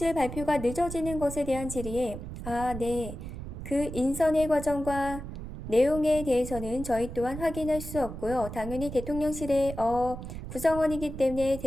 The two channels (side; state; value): right; noise; rumble, 9 dB below the sound